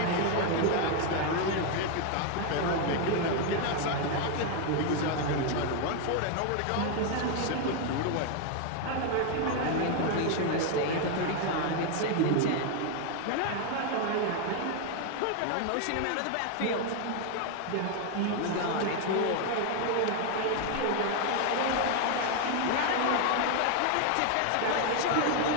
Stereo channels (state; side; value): different; both; correlation 0.01